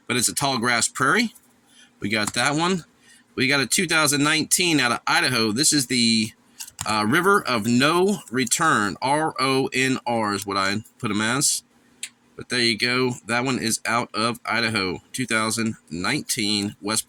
but it's a Tallgrass Prairie. We got that one. We got a 2019 out of Idaho. This is the River of No Return. RONR is what I put them as. But there you go. That one is out of Idaho. 2019 West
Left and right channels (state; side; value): identical; both; correlation 1.00